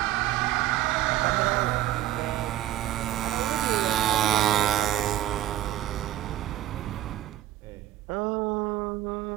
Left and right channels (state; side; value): quieter; left; 13.7 dB